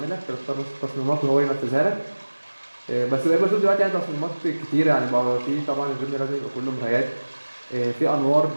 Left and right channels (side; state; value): both; inverted; correlation -1.00